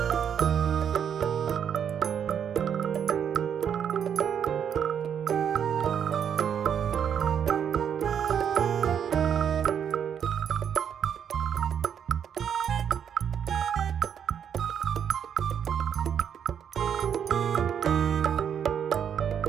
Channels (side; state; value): left; quieter; 8.3 dB